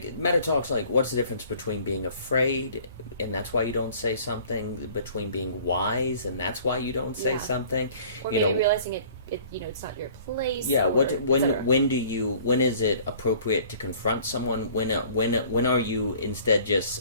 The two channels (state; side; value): inverted; both; correlation -0.52